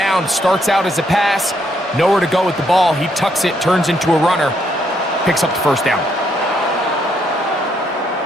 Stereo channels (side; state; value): both; normal; correlation 0.74